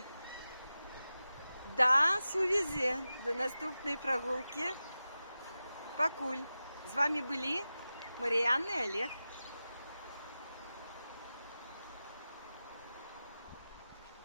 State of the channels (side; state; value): both; inverted; correlation -0.94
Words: до сувязі, до наступної прогулки. Пакуль. З вами були Мар'яна і Олег.